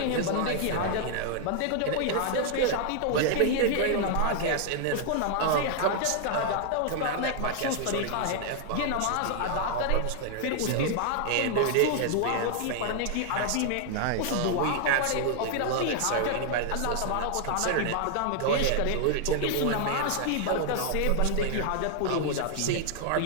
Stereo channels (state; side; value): different; both; correlation 0.00